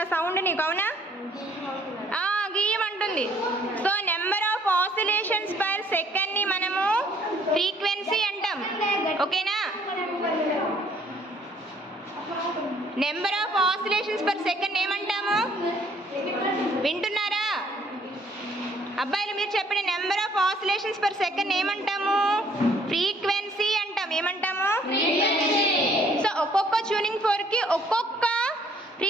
ఆ సౌండ్ నీకు, అవునా? గీయమంటుంది. So number of oscillations per సెకండ్ని మనము ఫ్రీక్వెన్సీ అంటాం. ఓకేనా? Number of oscillations per second ఏమంటాము? వింటున్నారా అబ్బాయిలు? మీరు చెప్పండి. Number of oscillations per second ఏమంటాము? ఫ్రీక్వెన్సీ అంటాం. ఏమంటాము? సో ఒక్కొక్క ట్యూనింగ్ ఫోర్క్కి ఒక్కొక్క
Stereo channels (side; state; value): both; normal; correlation 0.62